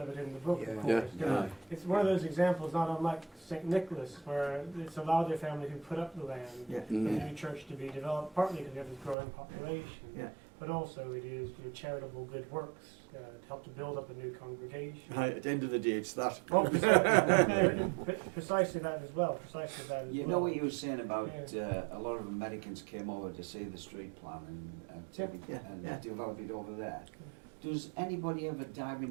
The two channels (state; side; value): drops out; left; at 9.2 s